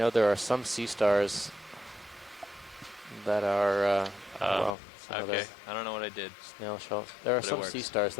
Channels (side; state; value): right; drops out; at 4.8 s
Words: there are some sea stars that are, well, some Okay. other I don't know what I did. snail shell. There are But it some sea works. stars